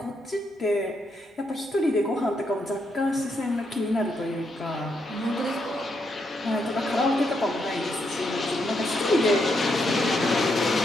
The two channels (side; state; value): both; normal; correlation 0.79